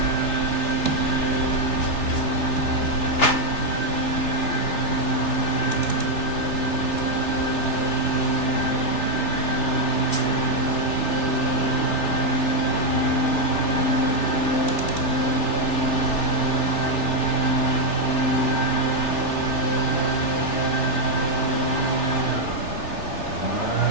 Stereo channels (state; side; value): late; right; 3.3 ms